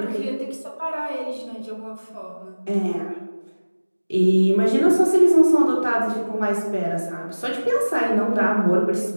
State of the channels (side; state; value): both; inverted; correlation -1.00